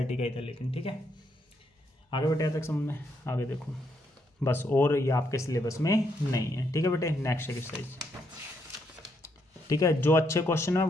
का ही था लेकिन। ठीक है, आगे बेटे तक समझ में, आगे देखो बस, और ये आपके सिलेबस में नहीं है। ठीक है बेटे, नेक्स्ट एक्सरसाइज। ठीक है, जो अच्छे क्वेश्चन है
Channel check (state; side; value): normal; both; correlation 0.76